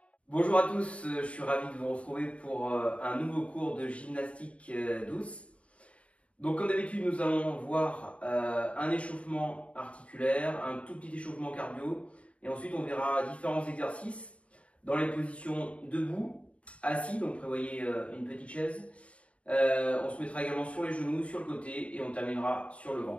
Bonjour à tous, je suis ravi de vous retrouver pour un nouveau cours de gymnastique douce. Donc comme d'habitude, nous allons voir un échauffement articulaire, un tout petit échauffement cardio et ensuite on verra différents exercices dans les positions debout, assis, donc prévoyez une petite chaise. On se mettra également sur les genoux, sur le côté et on terminera sur le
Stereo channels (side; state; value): right; late; 0.063 ms